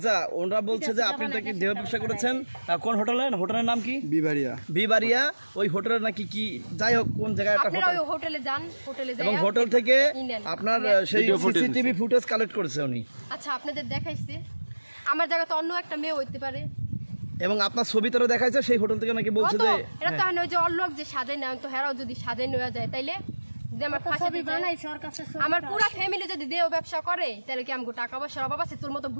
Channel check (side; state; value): both; inverted; correlation -1.00